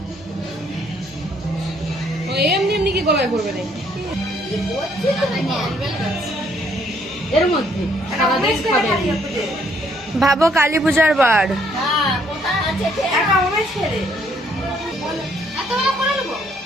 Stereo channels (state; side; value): noise; right; hum, 27 dB below the sound